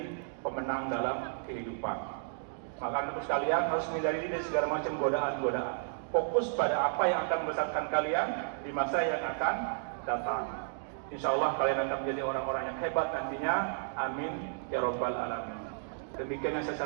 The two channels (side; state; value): left; silent; digital silence